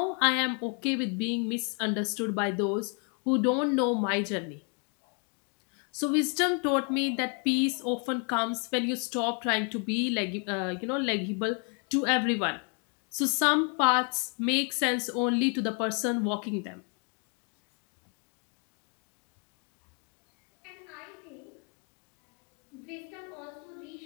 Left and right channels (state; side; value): quieter; right; 38.1 dB